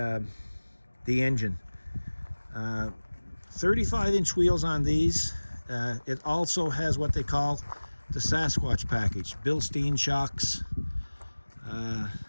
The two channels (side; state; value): both; inverted; correlation -1.00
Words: engine. 35-inch wheels on these. It also has what they call the Sasquatch package, Bilstein shocks,